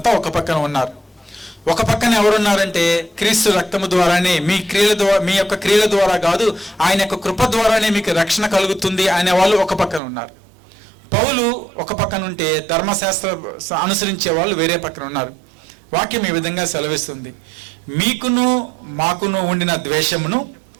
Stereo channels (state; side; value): drops out; left; at 10.0 s